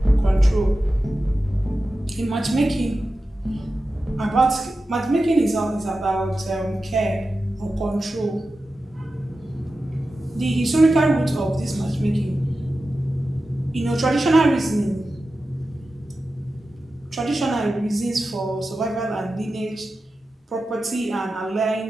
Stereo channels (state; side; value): normal; both; correlation 0.93